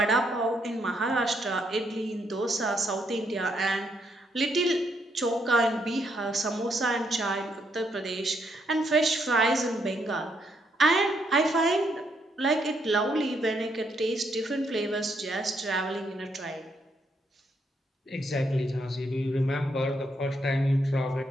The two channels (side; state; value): both; normal; correlation 0.75